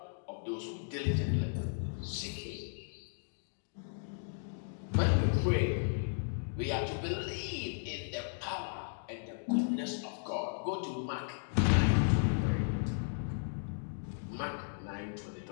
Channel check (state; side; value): silent; right; digital silence